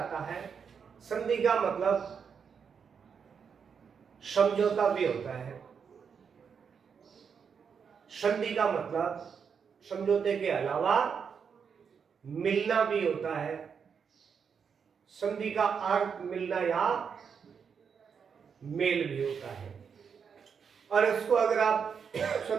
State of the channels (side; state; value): left; quieter; 6.6 dB